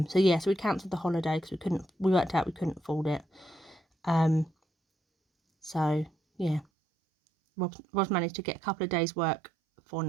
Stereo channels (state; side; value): drops out; left; at 6.7 s